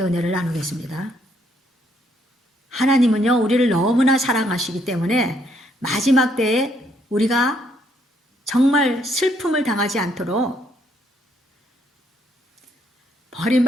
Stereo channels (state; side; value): normal; both; correlation 0.70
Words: 은혜를 나누겠습니다. 하나님은요, 우리를 너무나 사랑하시기 때문에 마지막 때에 우리가 정말 슬픔을 당하지 않도록,